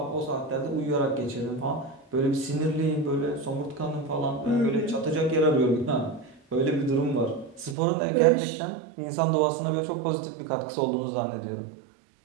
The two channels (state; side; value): drops out; left; at 7.8 s